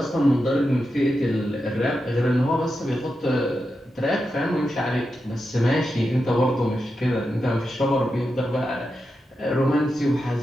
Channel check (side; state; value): both; normal; correlation 0.88